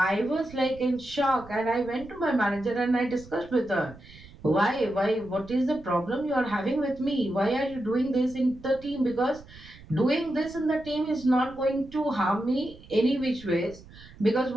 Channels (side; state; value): right; noise; rumble, 20 dB below the sound